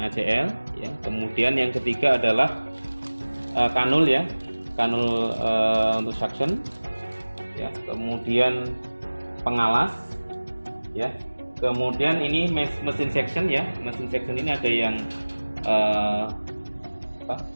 ya. Kemudian yang ketiga adalah kanul ya, kanul untuk suction ya. Kemudian pengalas ya. Kemudian ini mesin suction ya, mesin suction ini ada yang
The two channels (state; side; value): inverted; both; correlation -1.00